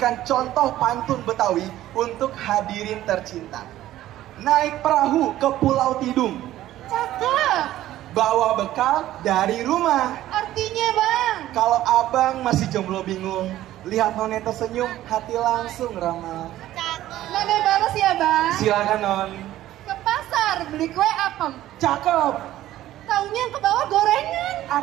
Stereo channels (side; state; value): left; quieter; 14.1 dB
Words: contoh pantun Betawi untuk hadirin tercinta. Naik perahu ke Pulau Tidung, Cakep. bawa bekal dari rumah. Artinya bang, Kalau abang masih jomblo bingung, lihat None tersenyum, hati langsung ramah. None balas ya bang. Silakan Non. Ke pasar beli kue apem. Cakep. Taunya ke bawah gorengan.